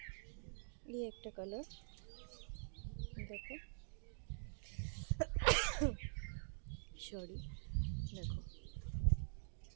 এই একটা কালার দেখো, সরি, দেখো।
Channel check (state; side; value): silent; left; digital silence